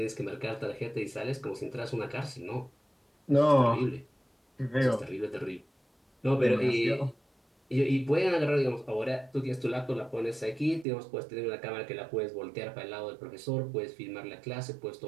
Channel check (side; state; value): left; drops out; at 10.9 s